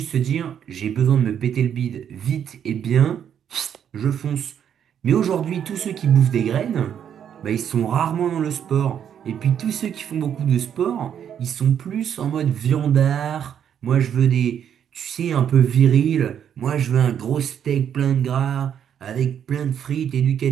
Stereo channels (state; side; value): quieter; left; 8.9 dB